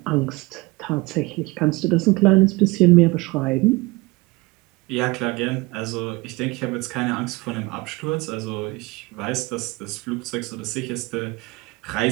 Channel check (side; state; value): left; quieter; 23.5 dB